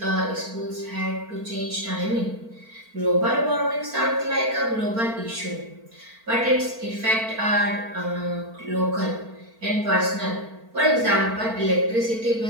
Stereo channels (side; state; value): left; late; 4.4 ms